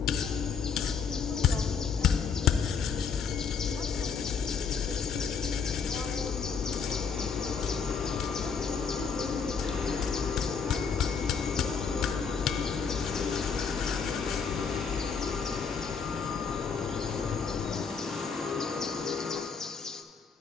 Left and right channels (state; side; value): quieter; right; 6.0 dB